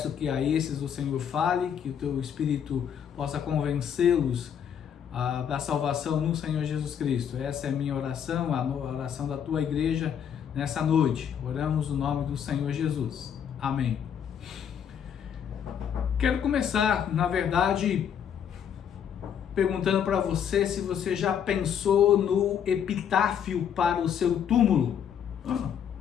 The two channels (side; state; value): right; quieter; 8.4 dB